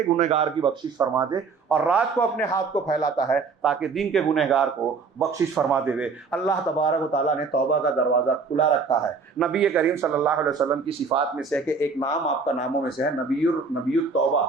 گنہگار کی بخشش فرما دے، اور رات کو اپنے ہاتھ کو پھیلاتا ہے تاکہ دن کے گنہگار کو بخشش فرما دے۔ اللہ تبارک و تعالیٰ نے توبہ کا دروازہ کھلا رکھا ہے۔ نبی کریم صلی اللہ علیہ وسلم کی صفات میں سے کہ ایک نام آپ کا ناموں میں سے ہے نبی التوبہ،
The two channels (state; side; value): quieter; left; 4.8 dB